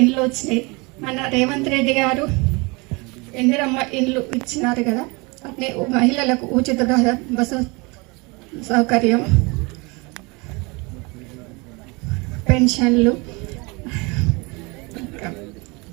వచ్చినాయి. మన రేవంత్ రెడ్డి గారు ఇందిరమ్మ ఇండ్లు ఇచ్చినారు కదా. అట్నే మహిళలకు ఉచిత బస్సు సౌకర్యం, పెన్షన్లు,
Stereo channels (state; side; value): quieter; left; 27.5 dB